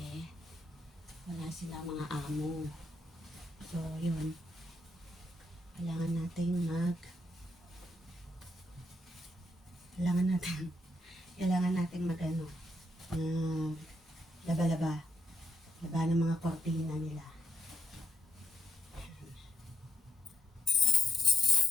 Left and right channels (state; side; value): normal; both; correlation 0.76